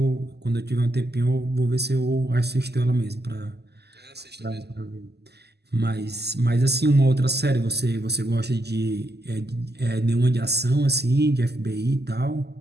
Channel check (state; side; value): late; left; 0.48 ms